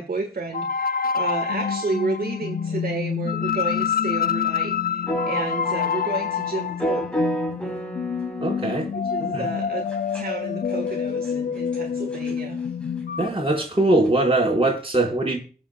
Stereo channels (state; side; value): normal; both; correlation 0.31